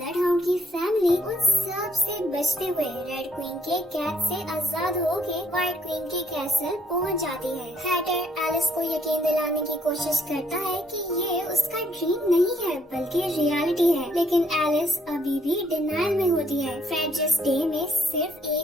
हाउंड की फैमिली उन सब से बचते हुए रेड क्वीन के कैद से आजाद होके व्हाइट क्वीन के कैसल पहुंच जाती है। हैटर एलिस को यकीन दिलाने की कोशिश करता है कि ये उसका ड्रीम नहीं है बल्कि रियलिटी है, लेकिन एलिस अभी भी डिनायल में होती है। फ्रैब्जस डे में सिर्फ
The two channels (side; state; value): both; normal; correlation 0.69